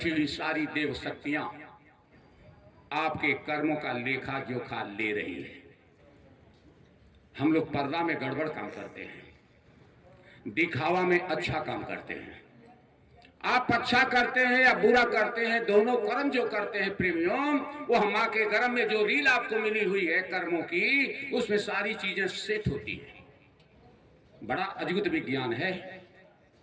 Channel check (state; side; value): identical; both; correlation 1.00